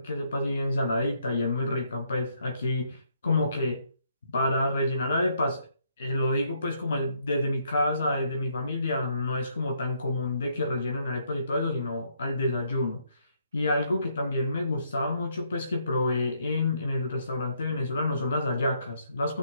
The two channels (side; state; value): both; inverted; correlation -0.72